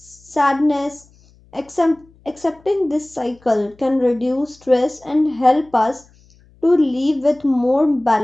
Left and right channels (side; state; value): left; noise; hum, 30 dB below the sound